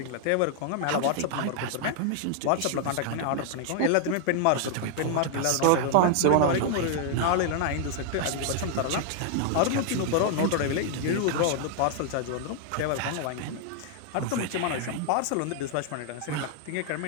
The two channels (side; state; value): both; different; correlation 0.00